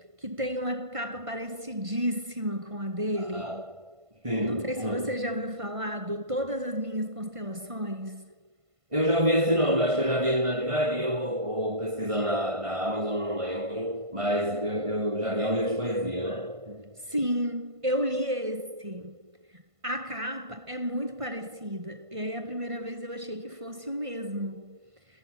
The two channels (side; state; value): left; late; 1.5 ms